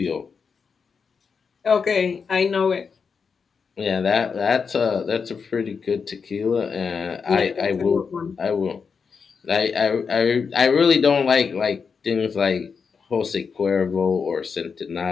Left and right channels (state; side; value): quieter; right; 5.7 dB